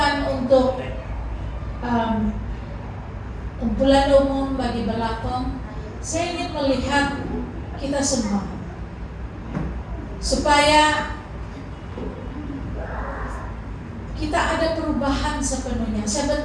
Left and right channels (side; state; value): both; identical; correlation 1.00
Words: untuk kumpulan umum bagi Belakong. Saya ingin melihat kita semua supaya kita ada perubahan sepenuhnya. Saya